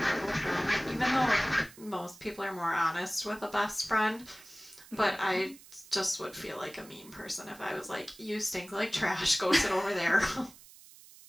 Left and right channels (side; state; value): right; noise; hiss, 21 dB below the sound